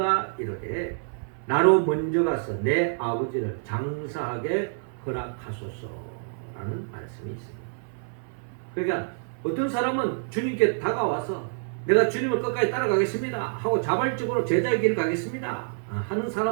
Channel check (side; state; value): left; silent; 60 dB below the other